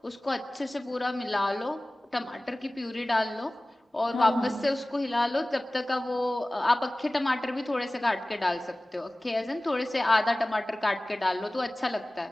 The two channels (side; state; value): both; normal; correlation 0.98